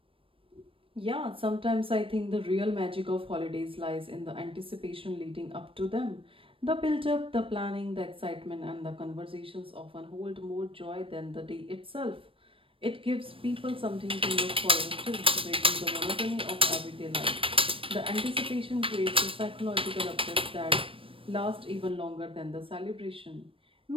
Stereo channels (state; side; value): late; left; 0.26 ms